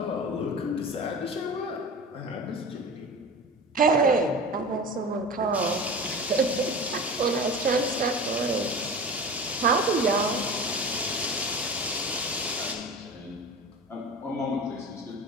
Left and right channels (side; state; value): both; normal; correlation 0.32